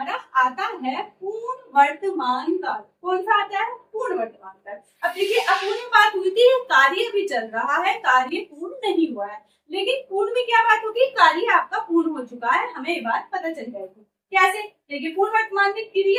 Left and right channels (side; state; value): both; identical; correlation 1.00